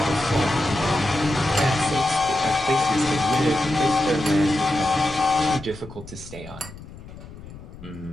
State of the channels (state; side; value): noise; left; rumble, 16 dB below the sound